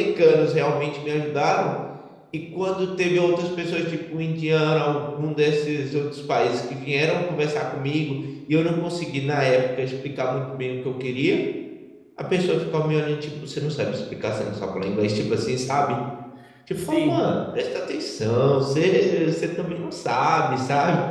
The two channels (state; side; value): identical; both; correlation 1.00